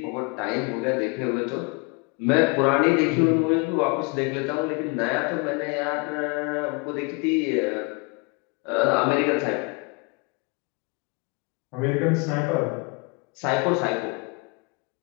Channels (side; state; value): right; quieter; 31.0 dB